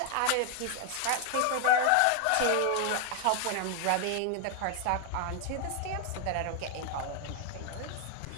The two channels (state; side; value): different; both; correlation 0.01